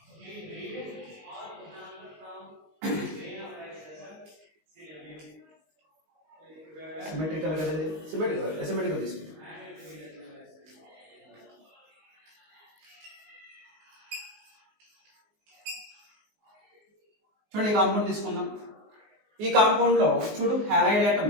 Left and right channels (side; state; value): left; late; 19 ms